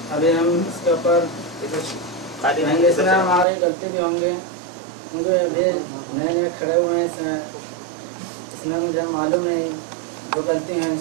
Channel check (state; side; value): drops out; left; at 3.5 s